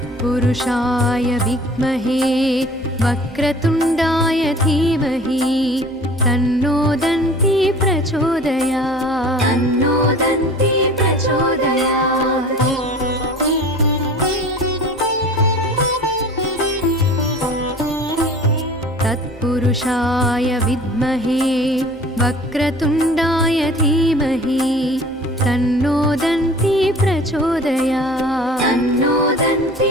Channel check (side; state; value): both; normal; correlation 0.45